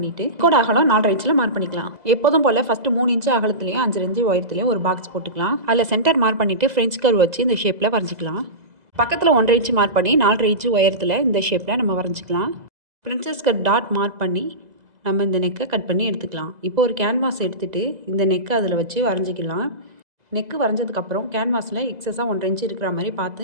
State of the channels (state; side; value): late; left; 2.0 ms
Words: கோட் அகலம் 4.5 இன்ச்சில் மார்க் பண்ணிக்கலாம். எப்போதும் போல் ஃபஸ்ட்டு 3 இன்ச்சு அகலத்துலையும் 5 இன்ச்சு உயரத்துலையும் ஒரு பாக்ஸ் போட்டுக்கலாம். அதில் சென்டர் மார்க் பண்ணிவிட்டு ஃப்ரெஞ்ச் கர்வ் வச்சு இந்த ஷேப்பில் வரைஞ்சிக்கலாம். பக்கத்தில் 1.5 இன்ச்சு மார்க் பண்ணி 4.5 இன்ச்சு உயரத்தில் இந்த ஷேப்பில் நம்ம வரைஞ்சிக்கலாம். பிரின்சஸ் கட் டாட் மார்க் பண்ணி நம்ம இந்த நெக்கை கட் பண்ணி எடுத்துக்கலாம். இப்போ ஒரு கேன்வாஸ் எடுத்துகிட்டு இந்த நெக்கை அதில் வச்சு வரைஞ்சிக்கலாம். நெக்கு வரைஞ்சதுக்கப்புறம் கேன்வாஸில் எக்ஸஸாக 1.5 இன்ச்சு இருக்கிற மாதிரி